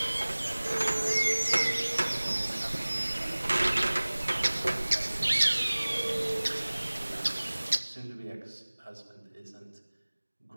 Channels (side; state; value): both; inverted; correlation -1.00